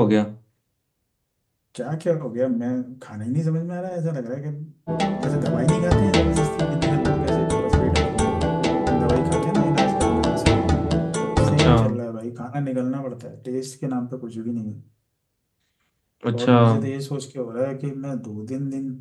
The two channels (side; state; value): both; identical; correlation 1.00